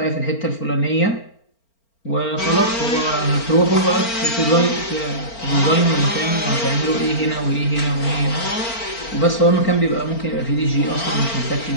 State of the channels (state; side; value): late; right; 4.4 ms